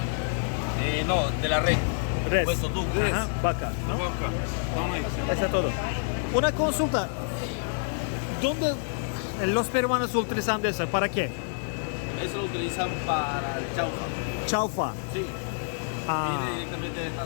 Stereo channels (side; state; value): right; silent; digital silence